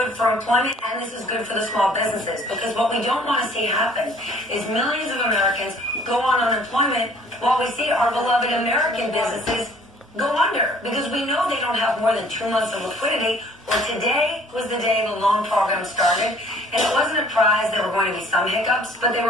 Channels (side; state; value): both; normal; correlation 0.55